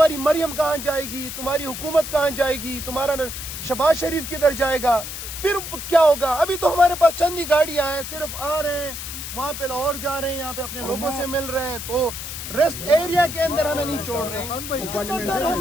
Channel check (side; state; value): left; noise; hiss, 8 dB below the sound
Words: مریم کہاں جائے گی؟ تمہاری حکومت کہاں جائے گی؟ تمہارا شہباز شریف کدھر جائے گا؟ پھر کیا ہوگا؟ ابھی تو ہمارے پاس چند ہی گاڑیاں ہیں، صرف آ رہے ہیں، وہاں پہ لاہور جا رہے ہیں، یہاں پہ اپنے لوگوں سے مل رہے ہیں، تو ریسٹ ایریا کے اندر ہمیں نہیں چھوڑ رہے ہیں۔ کتنا ڈر ہے